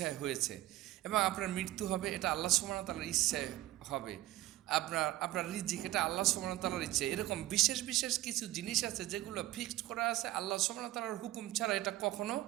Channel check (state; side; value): quieter; left; 16.0 dB